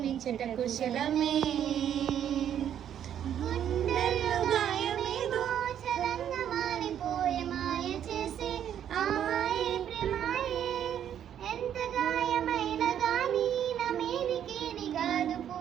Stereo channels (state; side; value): quieter; left; 9.8 dB